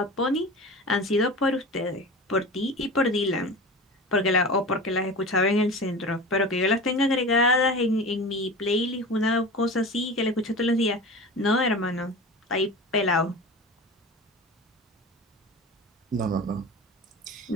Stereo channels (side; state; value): both; normal; correlation 0.33